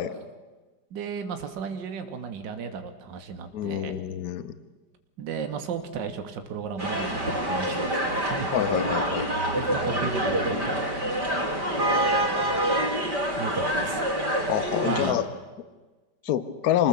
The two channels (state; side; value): late; left; 5.2 ms